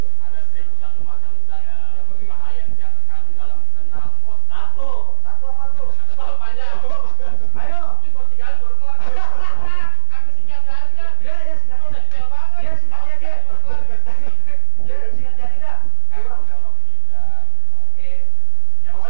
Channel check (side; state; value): both; different; correlation 0.00